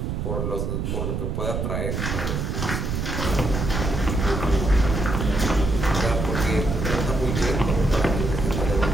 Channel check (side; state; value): right; noise; rumble, 2 dB below the sound